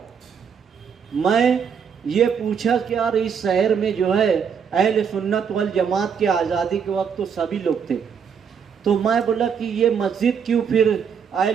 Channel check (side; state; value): left; quieter; 7.0 dB